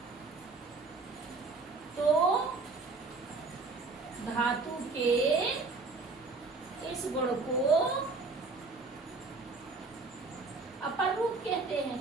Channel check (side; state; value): left; quieter; 3.9 dB